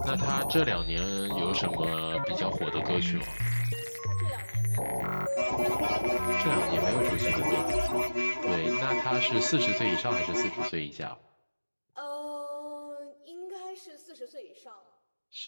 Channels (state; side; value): inverted; both; correlation -1.00